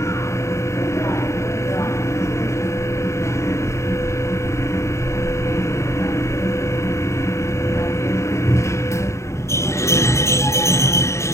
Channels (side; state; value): right; late; 0.14 ms